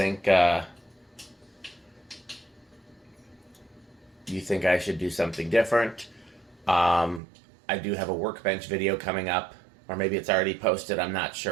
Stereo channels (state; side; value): drops out; left; at 7.2 s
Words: I should do something different. I do have a workbench video coming up, or maybe it's already posted. I'm not